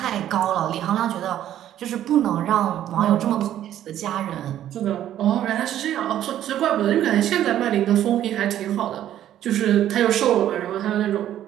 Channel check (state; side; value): quieter; left; 11.7 dB